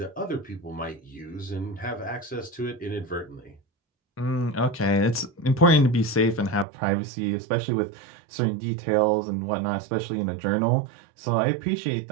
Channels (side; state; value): left; drops out; at 6.7 s